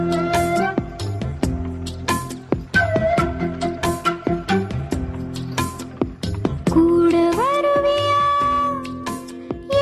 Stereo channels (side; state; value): both; identical; correlation 1.00